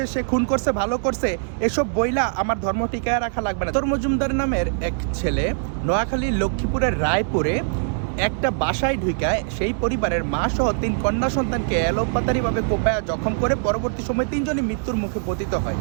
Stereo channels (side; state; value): left; silent; digital silence